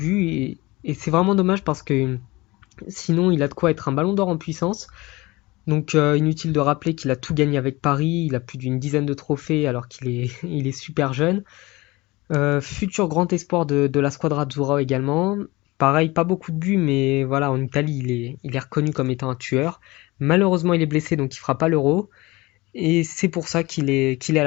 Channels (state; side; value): quieter; right; 21.8 dB